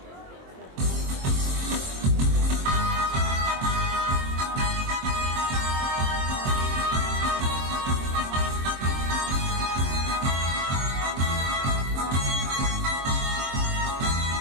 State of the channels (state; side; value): late; left; 23 ms